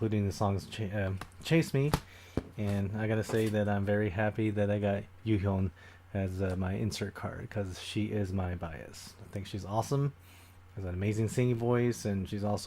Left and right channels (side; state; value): both; identical; correlation 1.00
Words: the songs Chase Me. And I gotta say that I'm very happy that I got Yuhyun as my insert card, because she is my bias. I think she's awesome. Has an amazing singing voice, and she's